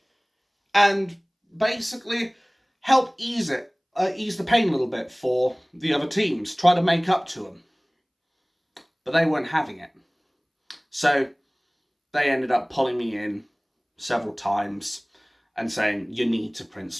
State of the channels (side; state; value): both; identical; correlation 1.00